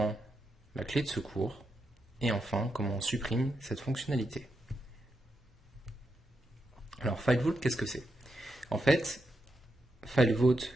la clé de secours et enfin comment on supprime cette fonctionnalité. Alors FileVault, qu'est-ce que c'est? En fait, FileVault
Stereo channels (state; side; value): normal; both; correlation 0.84